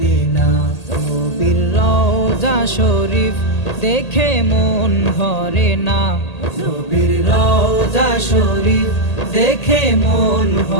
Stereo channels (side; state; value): right; late; 1.8 ms